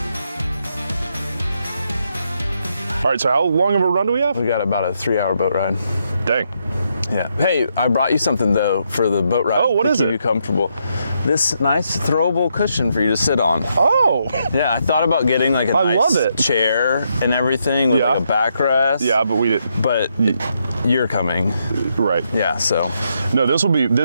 All right, so how long of a run do we have? We got about a 3-hour boat ride. Dang. Yeah. Hey, I brought you something though for the boat ride. Oh, what is it? To keep you comfortable. This nice throwable cushion for you to sit on. Oh. Yeah, I thought about getting like a nice chair and everything with like a backrest. Yeah, but we didn't. But you're coming. Right. Yeah, so. No,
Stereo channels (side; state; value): both; inverted; correlation -0.78